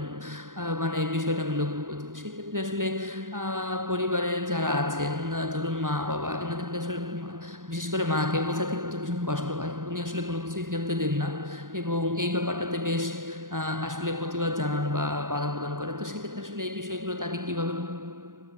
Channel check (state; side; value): late; left; 0.89 ms